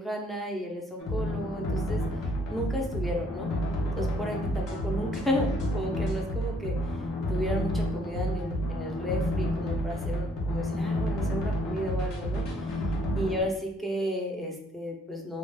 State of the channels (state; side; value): normal; both; correlation 0.65